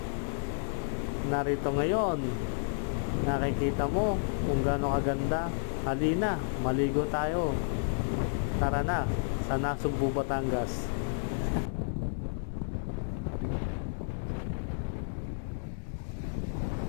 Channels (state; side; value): silent; right; 57 dB below the other